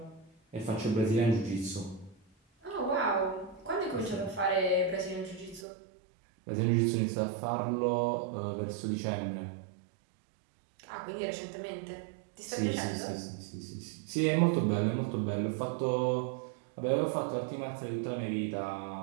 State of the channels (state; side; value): drops out; left; at 5.7 s